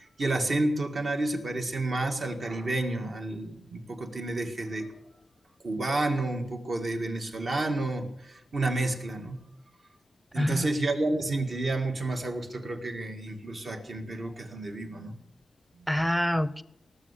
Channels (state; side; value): normal; both; correlation 0.92